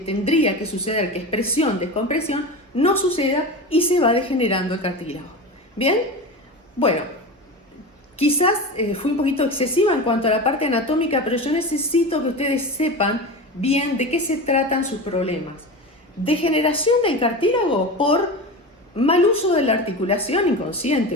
que suceder, que es presión, descompresión, no suceda y se va degenerando el cartílago. ¿Bien? Bueno, quizás fui un poquito excesiva en cuanto a la parte anatómica, pero yo necesito que ustedes sepan bien de qué se tratan sus problemas. Degeneración del cartílago por mal uso de la articulación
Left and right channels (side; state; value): both; normal; correlation 0.27